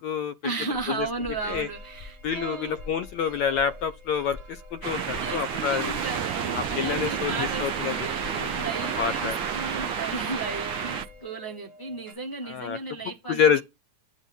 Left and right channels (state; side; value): late; right; 9.4 ms